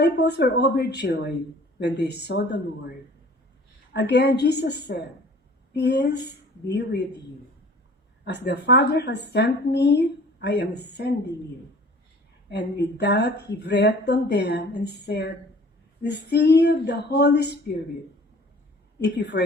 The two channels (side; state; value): both; normal; correlation 0.49